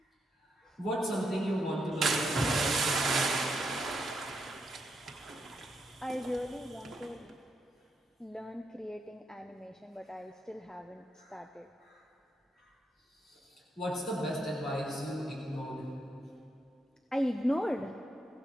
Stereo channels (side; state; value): both; normal; correlation 0.81